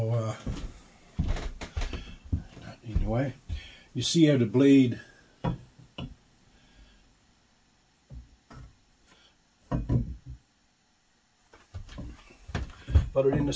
anyway, you see how the blade put it in the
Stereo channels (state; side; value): identical; both; correlation 1.00